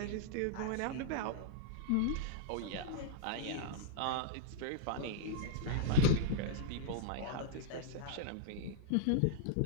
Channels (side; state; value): both; different; correlation -0.02